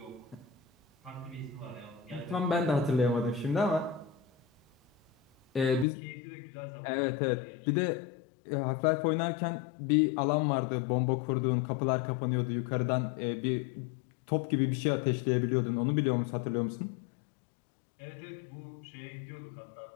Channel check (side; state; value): right; drops out; at 5.9 s